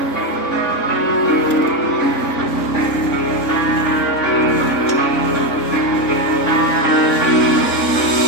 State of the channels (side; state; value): right; late; 3.6 ms